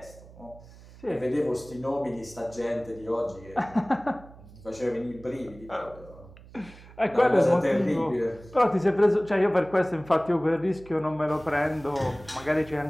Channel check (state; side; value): noise; right; hum, 20 dB below the sound